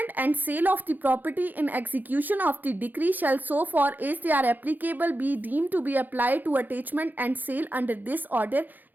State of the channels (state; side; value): late; left; 0.086 ms